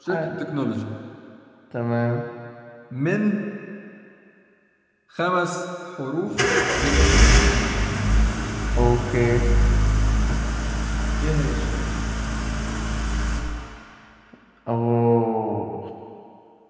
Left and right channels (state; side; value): identical; both; correlation 1.00